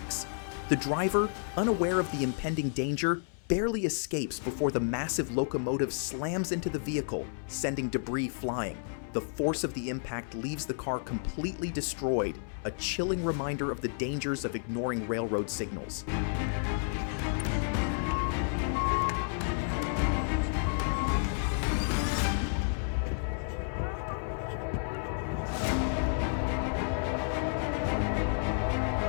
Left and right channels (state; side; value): silent; right; 57 dB below the other